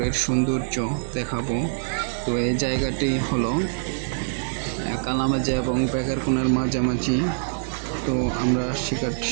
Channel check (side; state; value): left; silent; 62 dB below the other